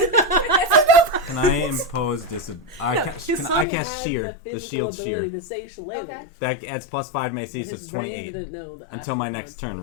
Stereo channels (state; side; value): drops out; right; at 3.7 s